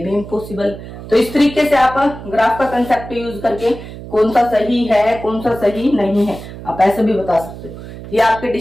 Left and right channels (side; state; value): right; noise; hum, 13 dB below the sound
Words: इम्पॉसिबल। तो इस तरीके से आप ग्राफ का कंसेप्ट यूज करके कौन सा सही है कौन सा सही नहीं है आप ऐसे भी बता सकते हो। ये आपके